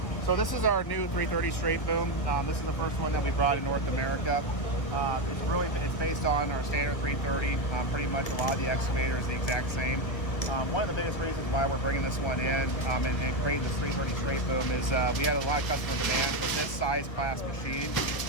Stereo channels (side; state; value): right; late; 1.5 ms